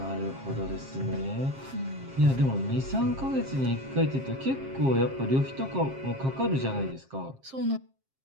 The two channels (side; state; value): left; late; 7.5 ms